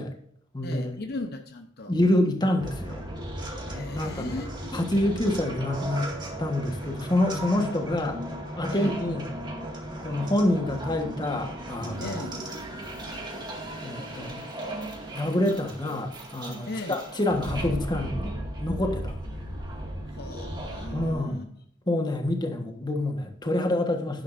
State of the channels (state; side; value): normal; both; correlation 0.76